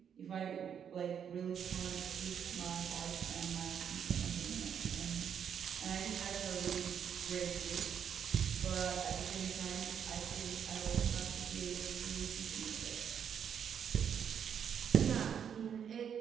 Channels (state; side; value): quieter; left; 8.1 dB